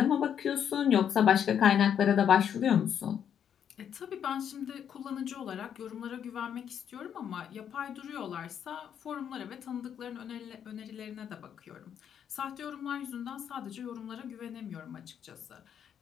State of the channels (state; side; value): quieter; right; 8.7 dB